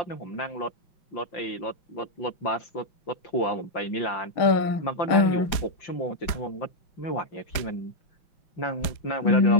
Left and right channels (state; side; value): late; right; 5.0 ms